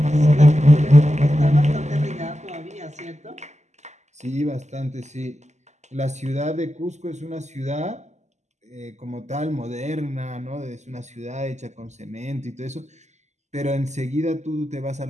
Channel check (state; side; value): late; left; 0.33 ms